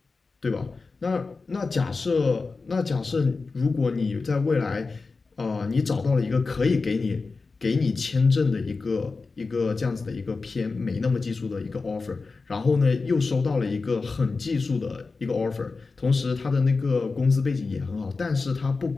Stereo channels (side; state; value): right; quieter; 4.1 dB